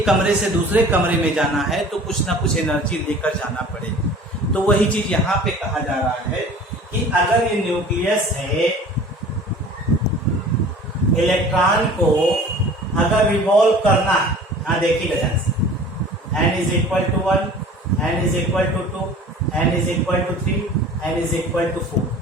कमरे से दूसरे कमरे में जाना है, तो कुछ ना कुछ एनर्जी लेकर जाना पड़ेगी। तो वही चीज यहाँ पे कहा जा रहा है कि अगर ये न्यूक्लियस है, इलेक्ट्रॉन को अगर रिवॉल्व करना है, हाँ देखिएगा ध्यान से, n is equal to 1, n is equal to 2, n is equal to 3, n is equal to 4,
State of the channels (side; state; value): both; normal; correlation 0.45